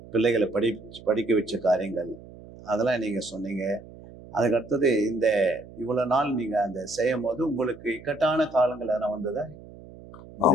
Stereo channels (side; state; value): right; noise; hum, 18 dB below the sound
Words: பிள்ளைகளை படிக்க வச்ச காரியங்கள், அதெல்லாம் நீங்க சொன்னீங்க. அதுக்கு அடுத்தது இந்த இவ்வளவு நாள் நீங்க அந்த செய்யும் போது உங்களுக்கு இக்கட்டான காலங்கள் எதனா வந்ததா?